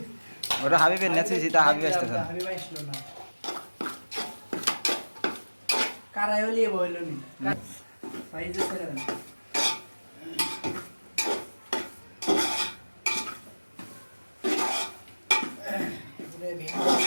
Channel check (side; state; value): both; inverted; correlation -1.00